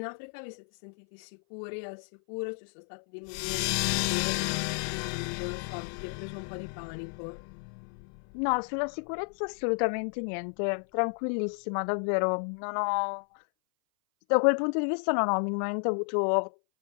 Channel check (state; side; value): silent; right; 57 dB below the other